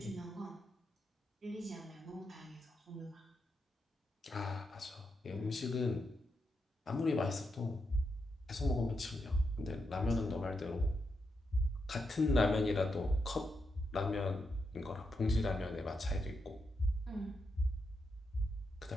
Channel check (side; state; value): both; normal; correlation 0.84